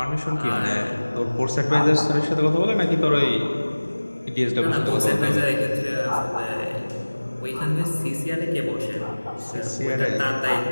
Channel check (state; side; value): inverted; both; correlation -1.00